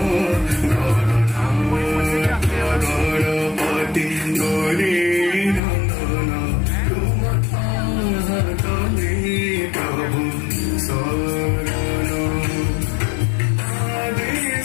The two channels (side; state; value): right; drops out; at 5.6 s